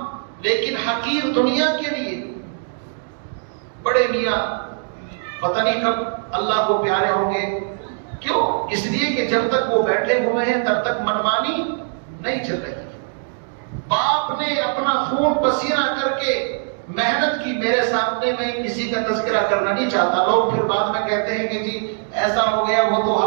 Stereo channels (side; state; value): left; silent; digital silence